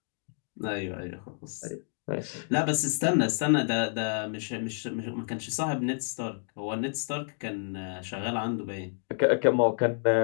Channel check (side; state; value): right; silent; 58 dB below the other